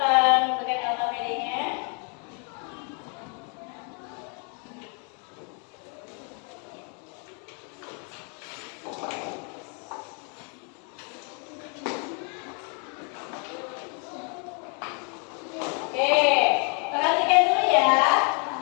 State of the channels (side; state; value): right; quieter; 37.9 dB